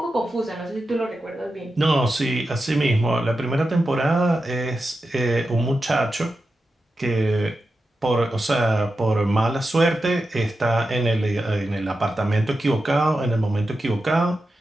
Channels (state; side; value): normal; both; correlation 0.90